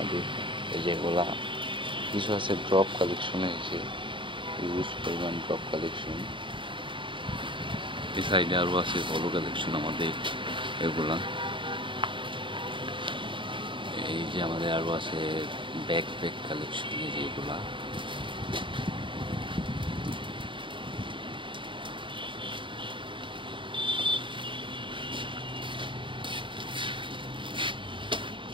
এই যেগুলা কিছু আছে ড্রপ কালেকশনে, যে হিউজ পরিমাণ ড্রপ কালেকশন। এই সাইডে আরও আছে পলো কালেকশন আমাদের এগুলা। এই যে আমাদের আরও আছে ব্যাকপ্যাক কালেকশন, এই যেগুলা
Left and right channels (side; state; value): left; late; 0.24 ms